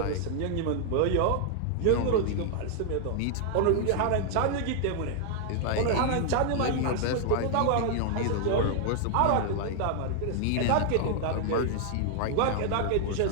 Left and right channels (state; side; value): different; both; correlation 0.00